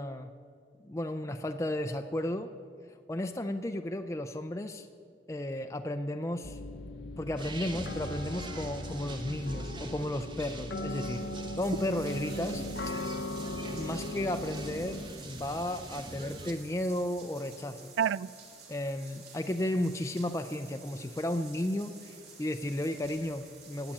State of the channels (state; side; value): normal; both; correlation 0.67